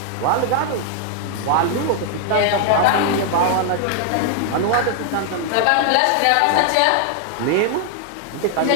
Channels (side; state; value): both; different; correlation 0.00